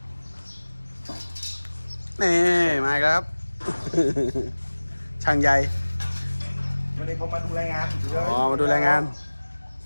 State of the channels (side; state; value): both; inverted; correlation -1.00